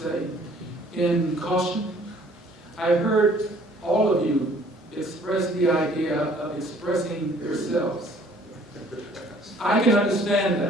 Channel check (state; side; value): normal; both; correlation 0.57